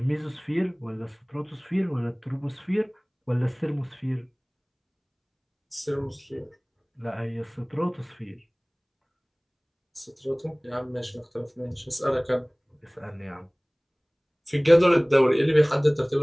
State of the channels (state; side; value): identical; both; correlation 1.00